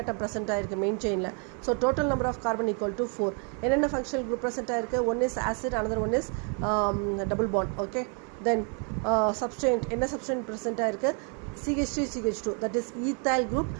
present ஆகிருக்கு மெயின் செயினில். So total number of carbon equal to 4. என்னென்ன ஃபங்க்ஷனல் குரூப் ப்ரெசென்ட் ஆகிருக்கு? One is acid, another one is double bond. Okay, then substituent. என்ன substituent present ஆகிருக்கு? CH3CH2, that is ethyl group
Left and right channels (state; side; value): quieter; left; 39.2 dB